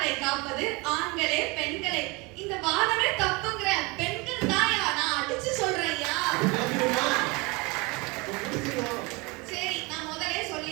காப்பது ஆண்களே பெண்களே, இந்த வாதமே தப்புங்கிற பெண்கள் தான் நான் அடிச்சு சொல்றேன் ஐயா. சரி, நான் முதலே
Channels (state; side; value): quieter; left; 26.4 dB